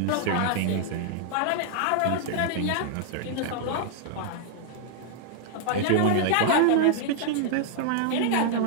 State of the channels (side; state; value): both; different; correlation -0.01